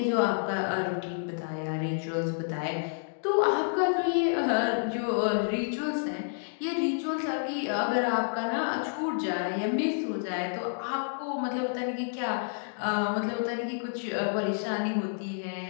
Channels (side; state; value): right; silent; digital silence